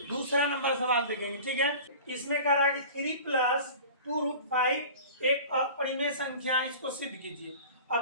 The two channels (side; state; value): both; inverted; correlation -0.39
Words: दूसरा नंबर सवाल देखेंगे। ठीक है, इसमें कह रहा है कि 3 प्लस 2√5 एक अपरिमेय संख्या, इसको सिद्ध कीजिए।